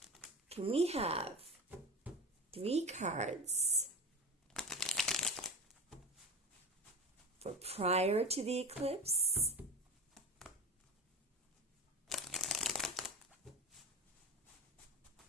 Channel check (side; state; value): both; normal; correlation 0.25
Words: Can we have 3 cards for prior to the eclipse,